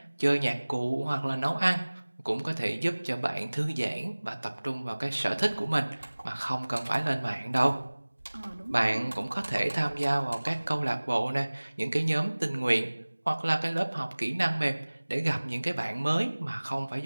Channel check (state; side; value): inverted; both; correlation -1.00